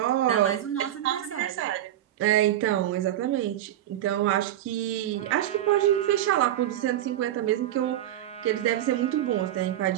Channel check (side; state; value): left; quieter; 12.4 dB